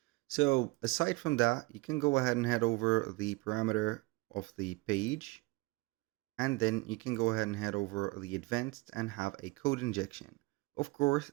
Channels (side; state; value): left; quieter; 22.5 dB